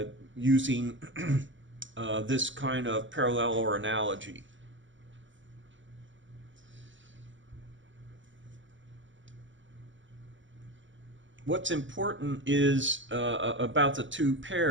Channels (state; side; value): late; left; 0.55 ms